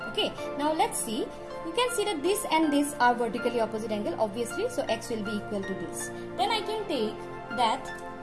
Okay, now let's see. You can see that this and this are vertically opposite angle, obviously, so X will be equal to this. Then I can take that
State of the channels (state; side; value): identical; both; correlation 1.00